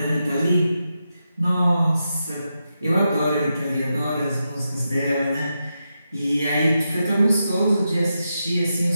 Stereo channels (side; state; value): both; inverted; correlation -0.87